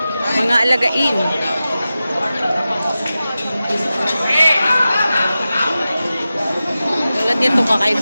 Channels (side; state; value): both; inverted; correlation -0.94